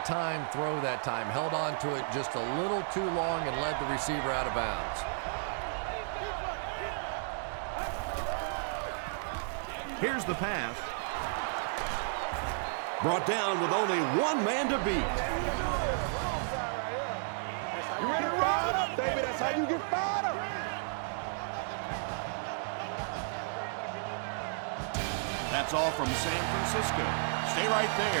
timed throw that time. Held on to it just a little too long and led the receiver out of bounds. Here's the pass. Brought down with only one man to beat. You ready to ride up, baby? That's how you get fired up. That's all from San Francisco. Stay right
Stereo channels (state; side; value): silent; left; digital silence